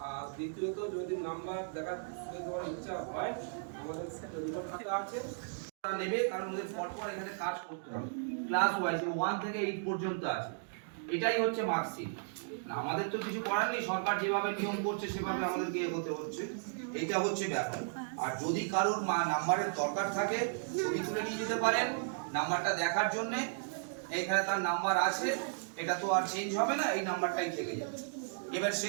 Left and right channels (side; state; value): left; silent; digital silence